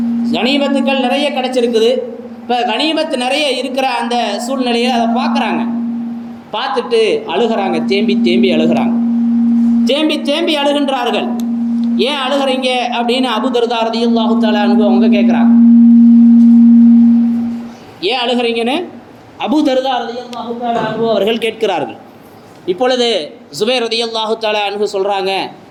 கனிமத்துக்கள் நிறைய கிடச்சிருக்குது. இப்போ கனிமத்து நிறைய இருக்கிற அந்த சூழ்நிலையில் அதை பார்க்குறாங்க. பார்த்துட்டு அழுகிறாங்க, தேம்பி தேம்பி அழுகிறாங்க, தேம்பி தேம்பி அழுகின்றார்கள். ஏன் அழுகிறீங்க அப்படின்னு அபூ தர்தா ரலியல்லாஹு தஆலா அன்ஹு அவங்க கேட்குறாங்க. ஏன் அழுகிறீங்கன்னு அபூ தர்தா ரலியல்லாஹு தஆலா அன்ஹு அவர்கள் கேட்கிறார்கள். இப்பொழுது ஸுபைர் ரலியல்லாஹு தஆலா அன்ஹு சொல்கிறாங்க,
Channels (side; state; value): both; identical; correlation 1.00